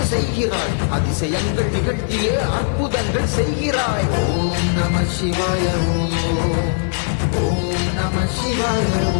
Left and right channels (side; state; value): right; silent; digital silence